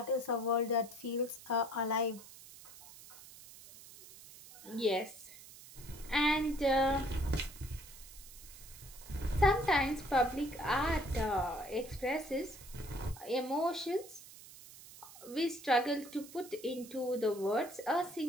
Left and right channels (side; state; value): right; noise; hiss, 18 dB below the sound